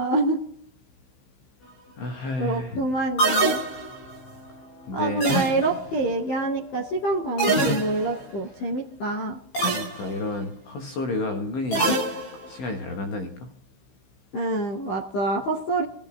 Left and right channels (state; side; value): late; right; 16 ms